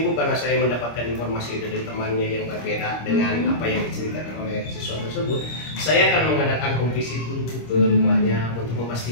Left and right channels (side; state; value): right; late; 25 ms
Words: Bu, karena saya mendapatkan informasi dari temannya yang berbeda dengan apa yang diceritakan oleh siswa tersebut, saya akan mengadakan home visit dulu ke rumahnya untuk